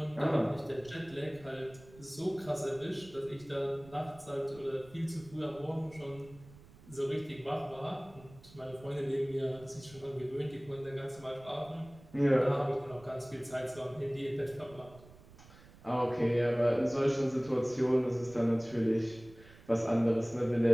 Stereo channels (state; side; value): noise; right; rumble, 21 dB below the sound